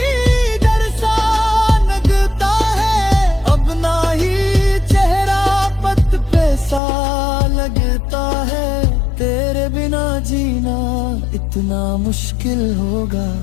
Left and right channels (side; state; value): right; drops out; at 6.8 s